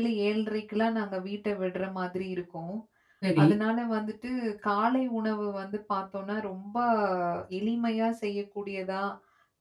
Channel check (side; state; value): both; identical; correlation 1.00